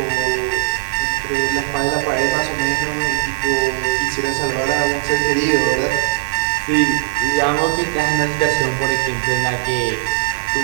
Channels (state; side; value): silent; left; digital silence